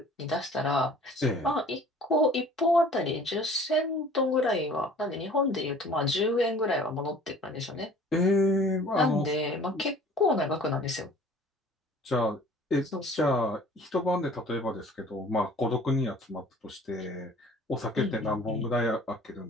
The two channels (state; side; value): normal; both; correlation 0.49